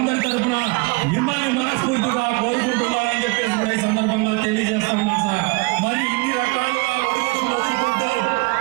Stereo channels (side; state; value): left; quieter; 27.0 dB